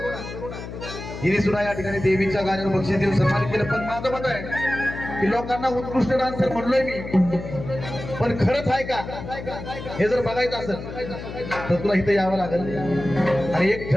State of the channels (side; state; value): left; noise; hum, 10 dB below the sound